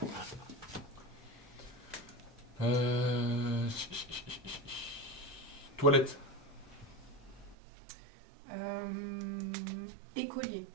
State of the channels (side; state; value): left; drops out; at 7.6 s